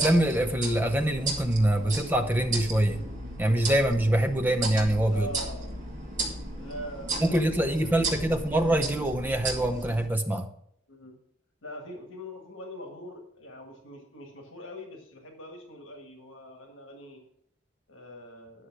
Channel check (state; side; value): normal; both; correlation 0.79